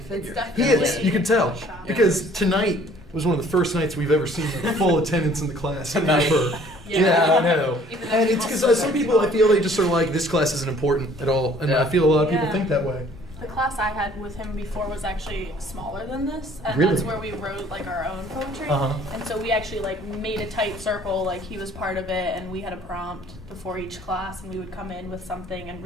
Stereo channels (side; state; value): both; normal; correlation 0.56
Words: He is. You can tell because tonight was one of the first nights we've ever seen like full attendance in the class ever. Yeah, I know. And it's because some people, I feel they just are like, this class isn't important at all. And I feel a lot of people think that way. The class I had with him before was actually smaller than this. And really? That's where we wrote like our own poetry. And so we actually like made a tight circle, like he was part of it, and we had a prompt before each class, and we would come in with something and